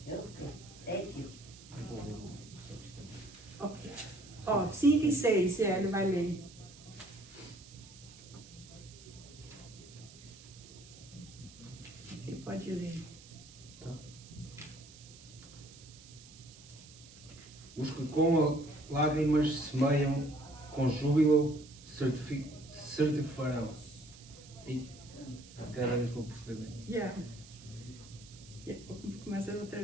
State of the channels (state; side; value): noise; right; hiss, 20 dB below the sound